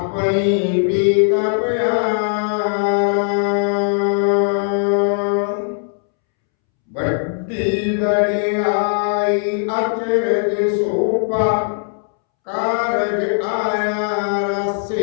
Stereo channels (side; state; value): right; silent; 67 dB below the other